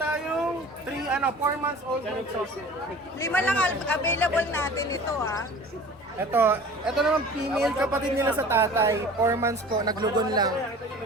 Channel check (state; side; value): normal; both; correlation 0.43